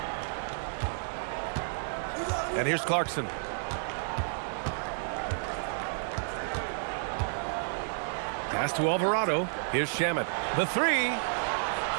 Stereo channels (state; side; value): silent; left; digital silence